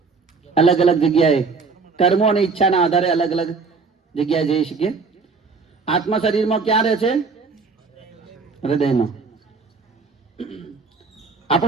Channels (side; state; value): left; quieter; 4.6 dB